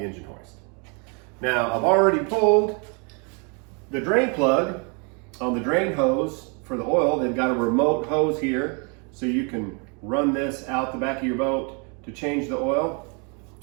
hoist. Now, I've already pulled the drain plug on the drain hose for the oil. They've got a remote hose here, so you can run this out the back of your boat to change the oil.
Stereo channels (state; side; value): quieter; left; 35.1 dB